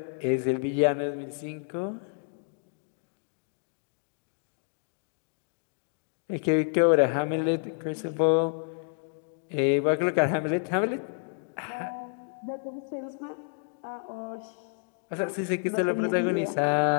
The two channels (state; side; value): silent; right; digital silence